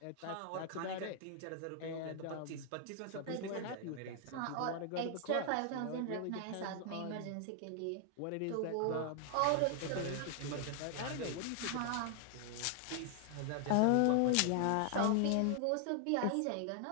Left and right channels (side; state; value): both; different; correlation 0.00